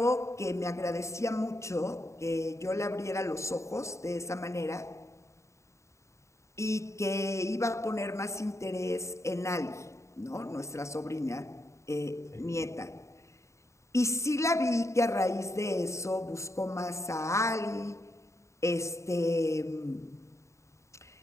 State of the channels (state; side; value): late; right; 0.14 ms